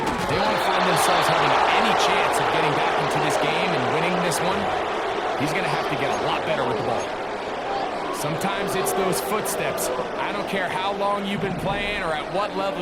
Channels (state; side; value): identical; both; correlation 1.00